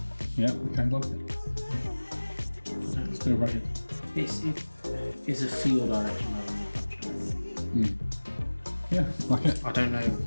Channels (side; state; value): both; inverted; correlation -1.00